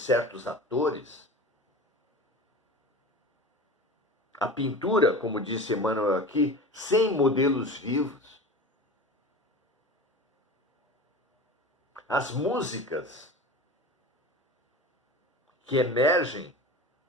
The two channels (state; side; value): normal; both; correlation 0.33